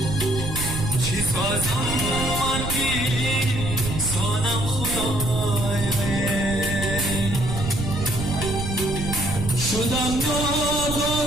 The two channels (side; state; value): right; noise; rumble, 4 dB below the sound